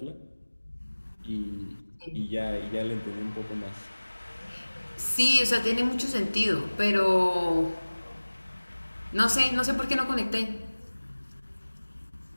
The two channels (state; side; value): inverted; both; correlation -1.00